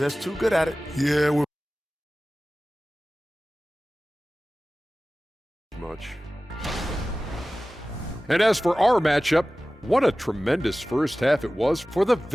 too good at it. Yeah, we're Much. And as for our matchup, what a tremendous first half it was for the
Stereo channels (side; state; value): both; normal; correlation 0.97